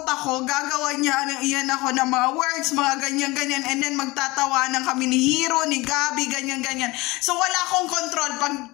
ako, gagawa niya iyan ako ng mga words, mga ganyan, and then magtatawanan kami ni Hero, ni Gabi, ganyan. So wala akong control. Pag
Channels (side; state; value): right; quieter; 22.3 dB